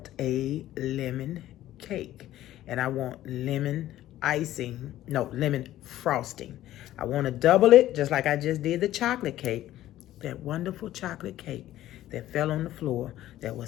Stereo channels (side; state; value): right; quieter; 13.9 dB